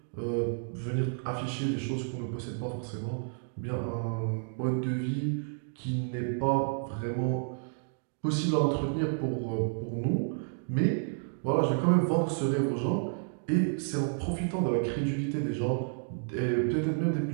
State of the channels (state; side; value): silent; left; digital silence